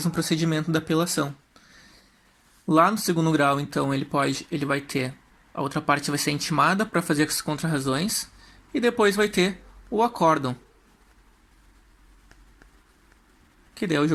procedimento da apelação. Lá no segundo grau, então, ele vai ter... A outra parte vai ser intimada para fazer as contrarrazões. E depois vai ter o acórdão, que daí é o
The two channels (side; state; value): both; identical; correlation 1.00